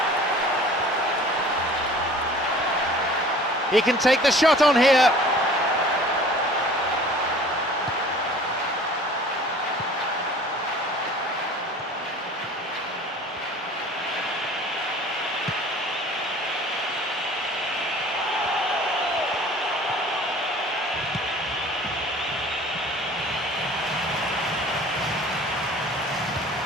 He can take the shot on here.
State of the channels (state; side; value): normal; both; correlation 0.47